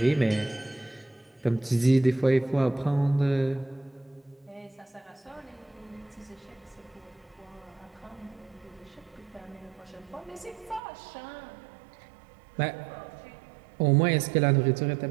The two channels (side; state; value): left; drops out; at 10.8 s